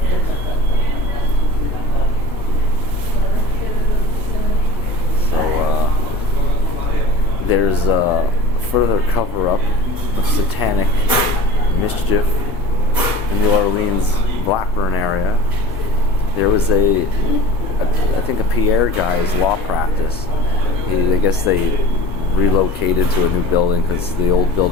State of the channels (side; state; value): both; normal; correlation 0.40